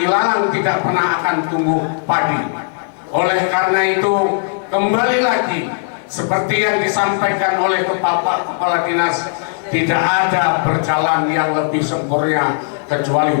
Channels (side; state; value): right; silent; digital silence